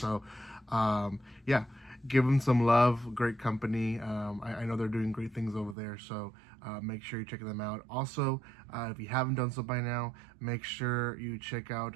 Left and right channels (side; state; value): left; drops out; at 5.8 s